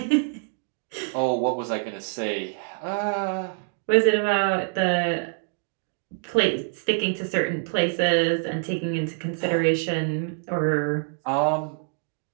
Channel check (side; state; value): left; silent; 61 dB below the other